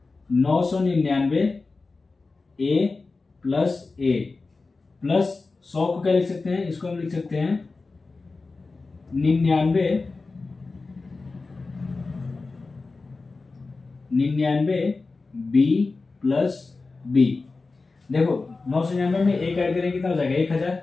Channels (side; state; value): right; quieter; 3.8 dB